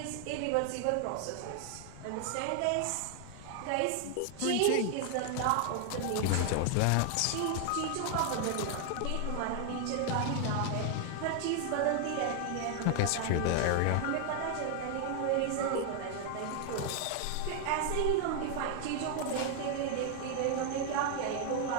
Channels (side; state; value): both; different; correlation 0.00